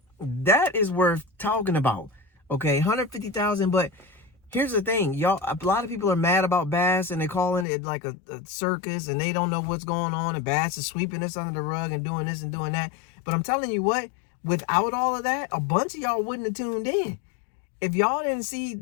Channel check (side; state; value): right; drops out; at 7.7 s